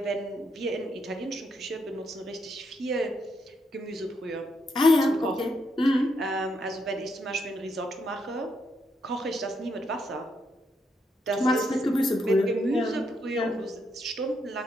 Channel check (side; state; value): both; normal; correlation 0.78